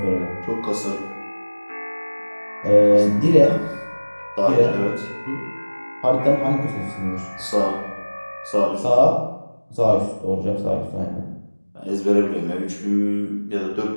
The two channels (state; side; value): inverted; both; correlation -1.00